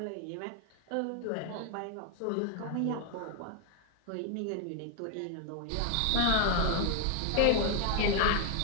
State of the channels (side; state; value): both; different; correlation 0.00